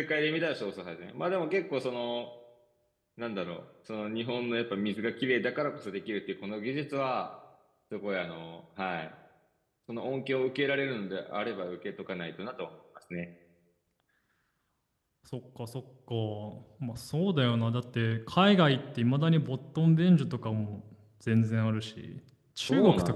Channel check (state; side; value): identical; both; correlation 1.00